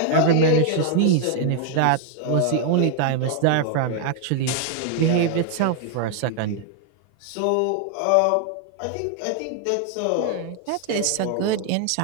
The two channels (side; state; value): both; different; correlation 0.00